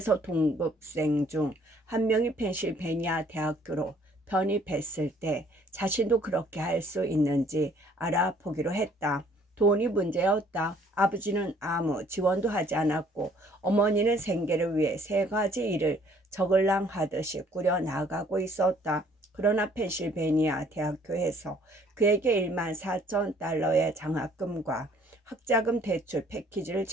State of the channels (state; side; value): normal; both; correlation 0.60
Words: 동급생 중 한 명이 펜실베니아 대학교로 편입했을 때 자신도 그렇게 할 수 있는지 알아보기로 했다. 돈이 문제였다. 아버지는 아무 지원도 하지 않았고 어머니는 생계를 위해 3가지 일을 저글랑하듯이 꾸려나가고 있었다. 그러나 펜실베니아 대학교에서 그에게 14,000달러의 장학금과 학자금 대출 패키지를